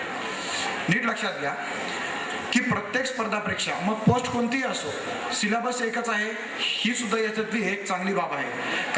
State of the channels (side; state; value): both; identical; correlation 1.00